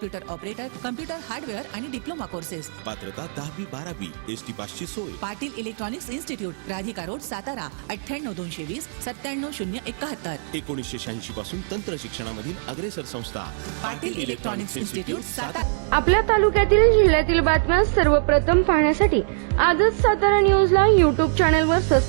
operator, computer hardware आणि डिप्लोमा कोर्सेस. पात्रता 10वी 12वी. एसटी पासची सोय. Patil electronics institute, Radhika road, Satara. 98 220 97 071. 1986 पासून तंत्र शिक्षणामधील अग्रेसर संस्था पाटील इलेक्ट्रॉनिक्स इन्स्टिट्यूट, सातारा. आपल्या तालुक्यातील जिल्ह्यातील बातम्या सर्वप्रथम पाहण्यासाठी आजच सातारा न्यूजला YouTube चॅनलवर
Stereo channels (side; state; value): left; silent; 63 dB below the other